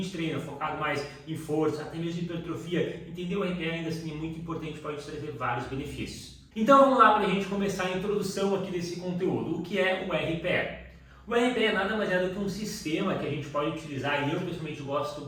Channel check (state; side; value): identical; both; correlation 1.00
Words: treina focado mais em força, até mesmo em hipertrofia, entender o RPE ainda assim é muito importante, pode trazer vários benefícios. Então vamos lá para a gente começar a introdução aqui desse conteúdo. O que é o RPE? O RPE nada mais é do que um sistema que a gente pode utilizar, e eu pessoalmente gosto